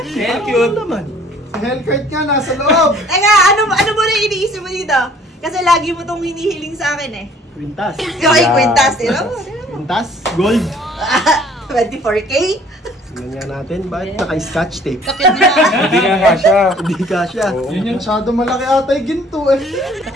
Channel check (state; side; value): normal; both; correlation 0.56